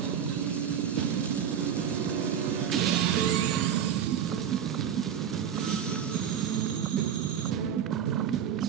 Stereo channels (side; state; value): left; quieter; 8.7 dB